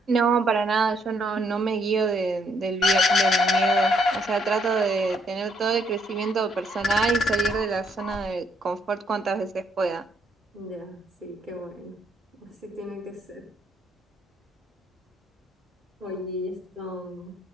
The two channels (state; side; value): normal; both; correlation 0.71